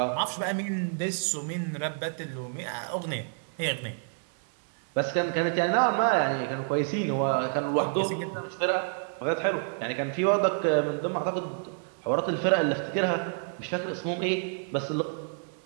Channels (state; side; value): silent; left; 59 dB below the other